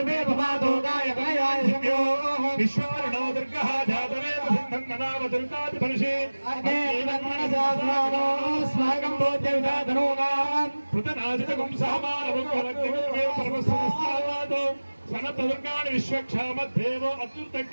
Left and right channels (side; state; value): both; inverted; correlation -1.00